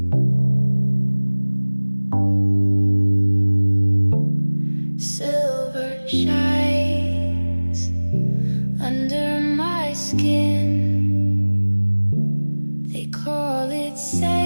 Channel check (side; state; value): both; inverted; correlation -1.00